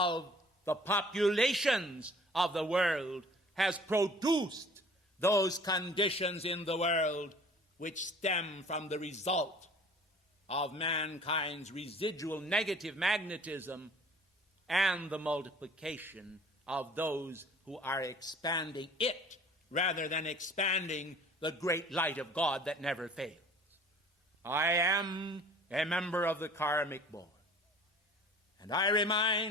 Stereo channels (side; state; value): both; normal; correlation 0.50